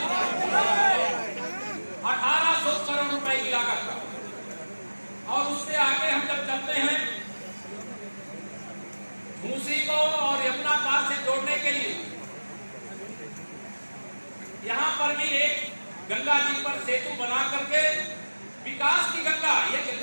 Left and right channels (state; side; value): inverted; both; correlation -1.00